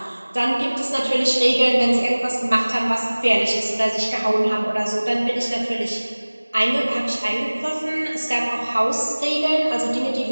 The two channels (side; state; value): both; inverted; correlation -1.00